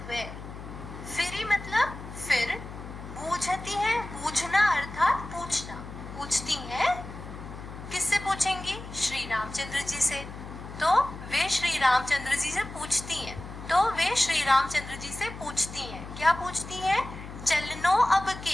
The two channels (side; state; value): left; noise; hum, 12 dB below the sound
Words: वे। फिर मतलब फिर, पूछती है, पूछना अर्थात पूछना, पूछती हैं, किससे पूछेंगी? श्री रामचंद्र जी से। तो वे श्री रामचंद्र जी से पूछती रामचंद्र जी से पूछती हैं। क्या पूछती हैं? चलनो अब